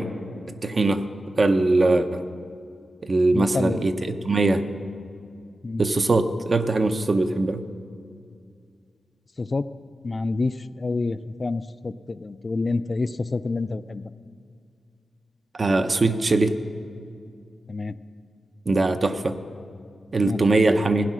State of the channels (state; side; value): normal; both; correlation 0.92